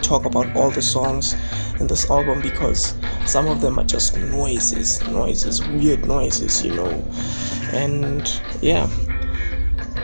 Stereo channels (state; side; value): inverted; both; correlation -1.00